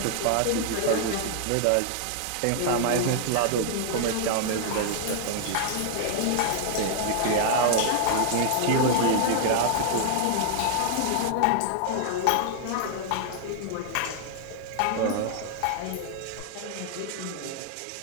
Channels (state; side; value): different; both; correlation 0.00